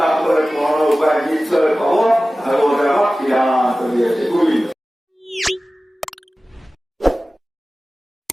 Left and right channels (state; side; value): normal; both; correlation 0.96